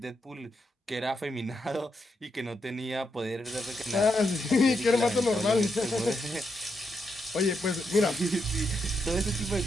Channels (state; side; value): normal; both; correlation 0.82